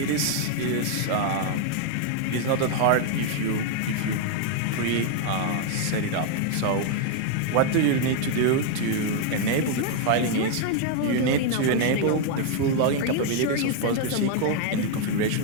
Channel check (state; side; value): different; both; correlation 0.00